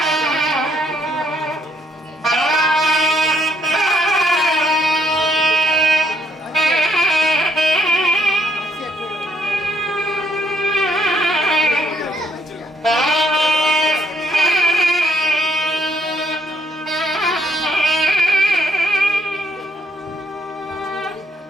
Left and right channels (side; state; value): both; normal; correlation 0.71